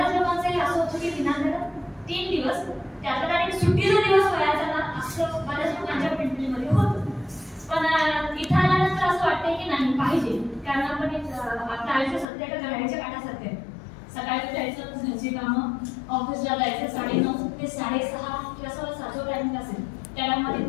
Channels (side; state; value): right; drops out; at 12.2 s